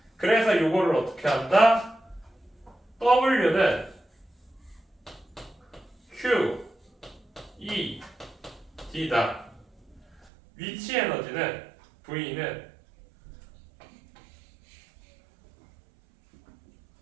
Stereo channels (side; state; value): left; drops out; at 10.3 s